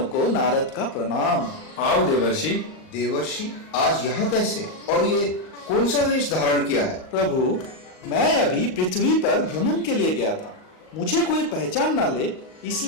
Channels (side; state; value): right; late; 38 ms